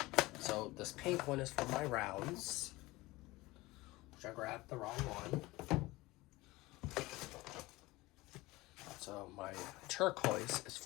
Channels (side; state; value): right; quieter; 20.5 dB